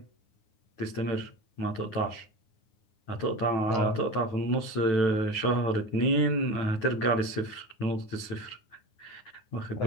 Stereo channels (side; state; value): right; late; 9.6 ms